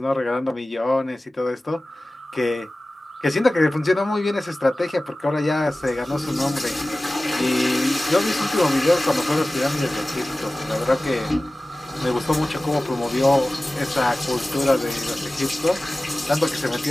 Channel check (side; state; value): both; normal; correlation 0.97